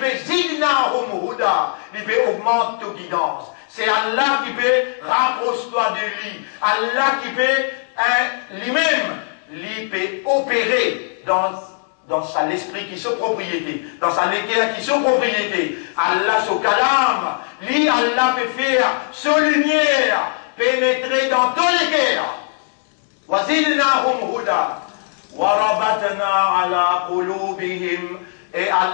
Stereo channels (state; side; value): silent; right; digital silence